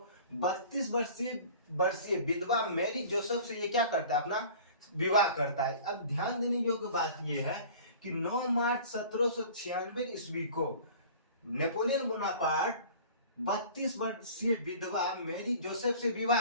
32 वर्षीय विधवा मैरी जोसेफ से ये क्या करता है? अपना विवाह करता है। अब ध्यान देने योग्य बात ये है कि 9 मार्च 1796 ईस्वी को नेपोलियन बोनापार्ट 32 वर्षीय विधवा मैरी जोसेफ से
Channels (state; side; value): inverted; both; correlation -0.44